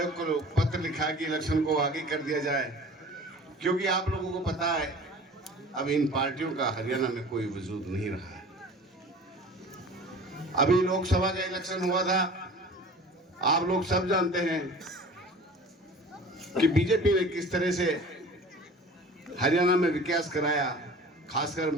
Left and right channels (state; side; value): normal; both; correlation 0.42